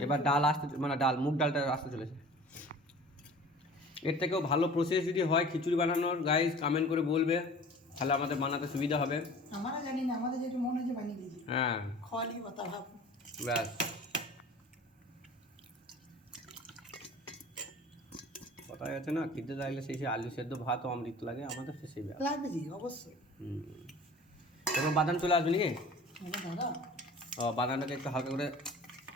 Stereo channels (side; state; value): both; normal; correlation 0.44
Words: এবার ডাল আসতে, মানে মুগ ডালটা আসতে চলেছে। এর থেকেও ভালো প্রসেস যদি হয় খিচুড়ি বানানোর, গাইস কমেন্ট করে বলবে, তাহলে আমাদের বানাতে সুবিধা হবে। আমরা জানি না, আমাদের যেটা মনে হচ্ছে বানিয়ে দিয়েছি। হ্যাঁ খালি কথা ভাব, ব্যাস। কথা আছে না, খেতে লাগলে সেই আলু সেদ্ধ ভাত অমৃত লাগে, আমাদের সেই ব্যাপার লাগবে জি, অবশ্যই। এবার বাদাম চলে আসবে নাকি? দাদা ও বাদামটাকে একটু হালকা করে